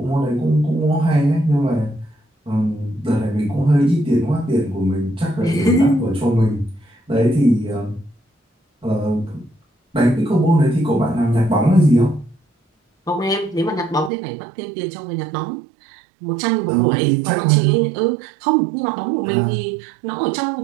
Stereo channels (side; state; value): left; drops out; at 14.1 s